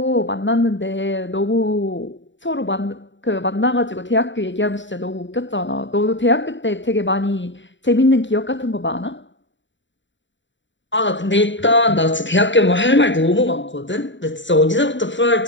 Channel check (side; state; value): right; late; 0.54 ms